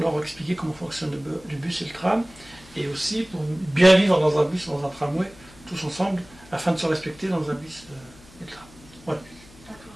expliquer comment fonctionne le bus et le tram, et aussi pour bien vivre dans un bus, dans un tramway, tous ensemble, afin de se respecter dans un bus et le tram. Voilà. D'accord.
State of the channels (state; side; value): noise; left; hum, 23 dB below the sound